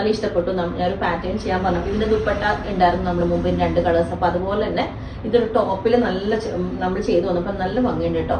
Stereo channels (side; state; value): both; identical; correlation 1.00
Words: ഇഷ്ടപ്പെട്ടു. ഞാനൊരു പാറ്റേൺ ചെയ്യാൻ പറഞ്ഞു. ഇതിന്റെ ദുപ്പട്ട ഉണ്ടായിരുന്നു നമ്മൾ മുമ്പ് 2 കളേഴ്സ്. അപ്പൊ അതുപോലെ തന്നെ ഇതൊരു ടോപ്പിൽ നല്ല നമ്മൾ ചെയ്തു വന്നപ്പോൾ നല്ല ഭംഗിയുണ്ട് കേട്ടോ.